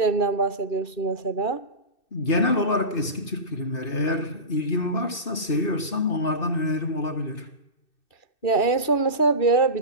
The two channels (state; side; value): late; right; 2.6 ms